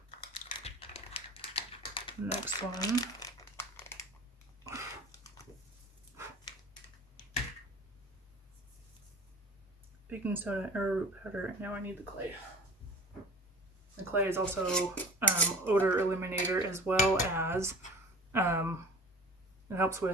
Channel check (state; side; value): normal; both; correlation 0.41